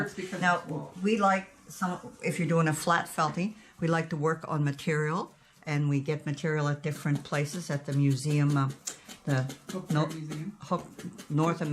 because now it's wool. we like if you're doing a flat felting, we like to work on material, and we get material at different places at the museum, the Hook No- Drug Museum. North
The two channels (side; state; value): both; identical; correlation 1.00